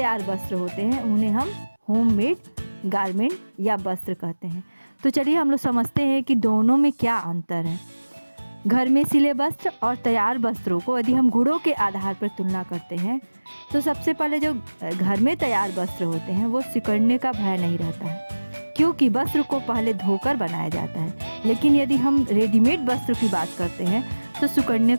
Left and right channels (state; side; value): inverted; both; correlation -1.00